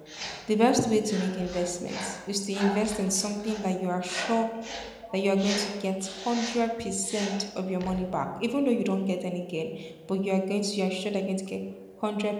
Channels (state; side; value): identical; both; correlation 1.00